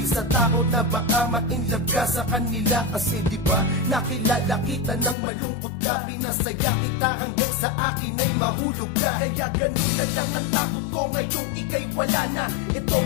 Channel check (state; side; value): drops out; right; at 5.2 s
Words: sa takot na baka ma-inlove ka sa kanila. Kasi diba nakilala kita ng malungkot ka, pinasaya kita hanggang sa akin ay mahulog ka. Kaya ganun na lang ang takot ko ngayong ika'y wala na. Ito